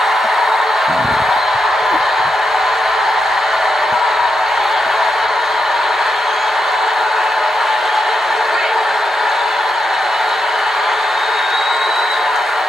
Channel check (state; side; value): normal; both; correlation 0.84